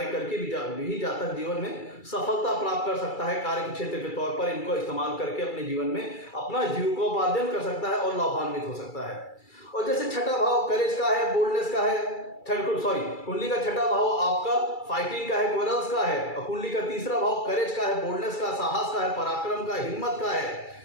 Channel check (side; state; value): right; late; 2.3 ms